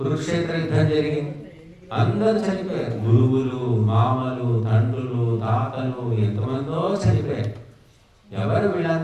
యుద్ధం జరిగింది, అందరూ చనిపోయారు. గురువులు, మామలు, తండ్రులు, తాతలు, ఎంతమందో చనిపోయారు. ఎవరు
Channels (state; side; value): identical; both; correlation 1.00